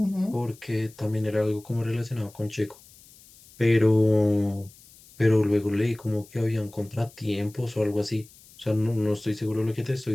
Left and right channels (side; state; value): left; noise; hiss, 24 dB below the sound